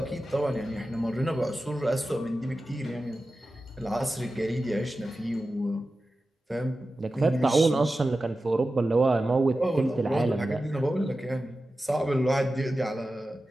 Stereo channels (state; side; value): normal; both; correlation 0.94